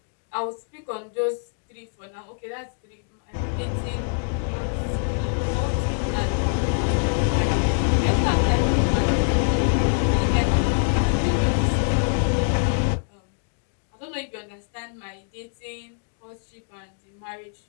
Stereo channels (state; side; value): silent; right; 62 dB below the other